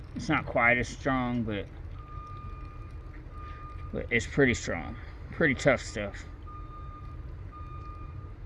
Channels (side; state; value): both; identical; correlation 1.00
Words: It's not quite as strong, but it's pretty strong. Pretty tough stuff.